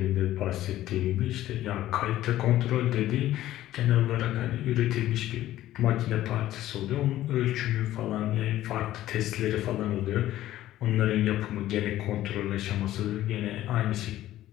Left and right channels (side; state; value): right; quieter; 14.0 dB